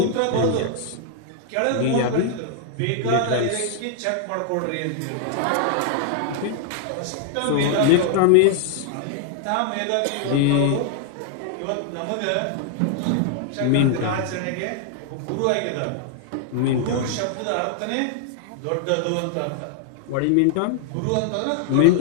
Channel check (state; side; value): different; both; correlation 0.00